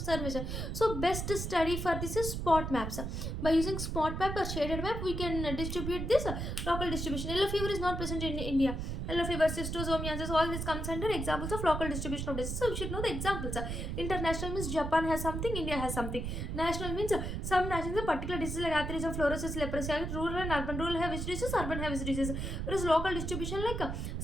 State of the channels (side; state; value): right; noise; rumble, 4 dB below the sound